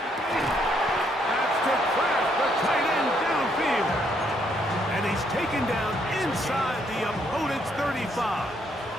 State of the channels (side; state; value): both; normal; correlation 0.72